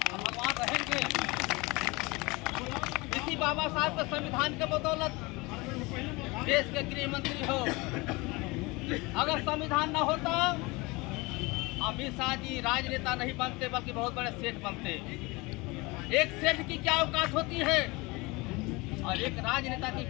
भगवान रहेंगे। इसी बाबा साहब के संविधान के बदौलत देश के गृह मंत्री हो। अगर संविधान न होता अमित शाह जी राजनेता नहीं बनते बल्कि बहुत बड़े सेठ बनते। एक सेठ की क्या औकात होती है और एक राजनेता की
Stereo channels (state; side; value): quieter; right; 24.4 dB